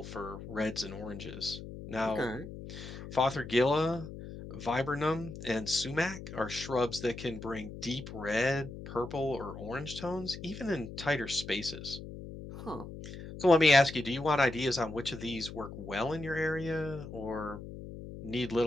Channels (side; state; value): left; noise; hum, 11 dB below the sound